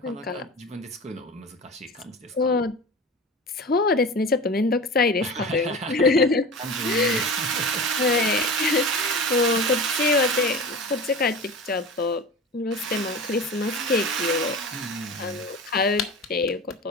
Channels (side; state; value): both; normal; correlation 0.32